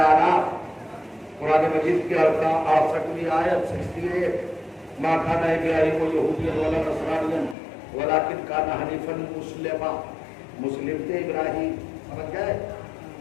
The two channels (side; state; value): right; drops out; at 7.6 s